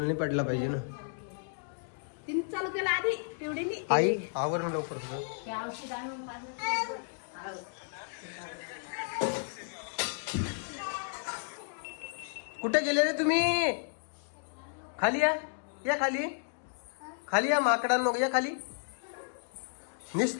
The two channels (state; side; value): silent; right; digital silence